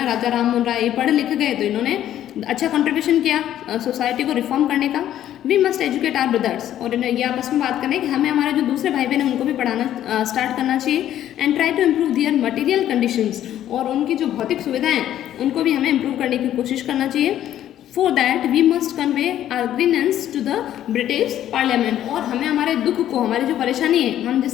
राजा राम मोहन राय, ये पढ़ लिख गए तो इन्होंने अच्छा कंट्रीब्यूशन किया सोसाइटी को रिफॉर्म करने का। We must educate our brothers, और ये आपस में बात करें कि हमें हमारे जो दूसरे भाई बहन हैं उनको भी पढ़ाना स्टार्ट करना चाहिए। And try to improve their material conditions, और उनकी जो भौतिक सुविधाएं उनको भी हमें इम्प्रूव करने की कोशिश करना चाहिए। For that we must convey our grievance to the British Parliament, और हमें हमारे दुख को, हमारी जो परेशानी है, हम जिस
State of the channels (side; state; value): right; quieter; 11.7 dB